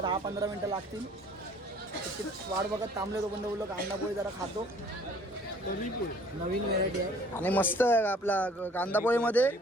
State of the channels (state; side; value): normal; both; correlation 0.54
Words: 10-15 मिनिटं लागतील. त्याची वाट बघत थांबले. तो पण बोललो कांदा पोळी जरा खातो. नवीन व्हेरायटी आहे आणि मस्त आहे आपला कांदा पोळीमध्ये.